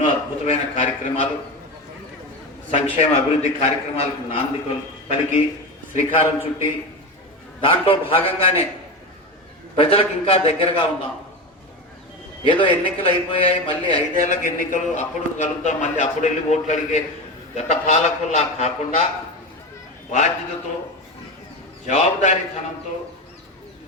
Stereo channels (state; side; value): normal; both; correlation 0.22